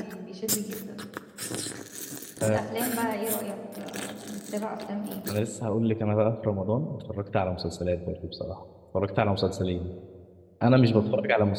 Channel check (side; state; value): both; identical; correlation 1.00